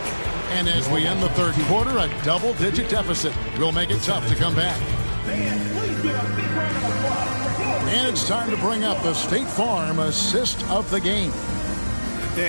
And as we end the 3rd quarter, a double-digit deficit will make it tough to come back. And it's time to bring up the State Farm assist of the game.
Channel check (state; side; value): inverted; both; correlation -1.00